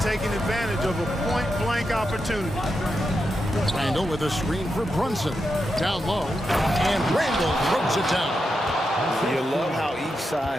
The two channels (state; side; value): normal; both; correlation 0.87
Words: advantage of a point-blank opportunity. Randall with a screen for Brunson. Down low, and Randall throws it down. You love how each